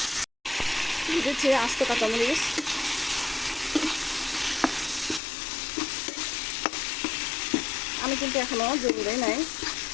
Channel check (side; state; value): right; drops out; at 5.2 s